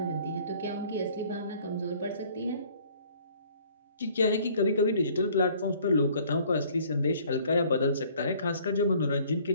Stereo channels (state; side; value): inverted; both; correlation -0.56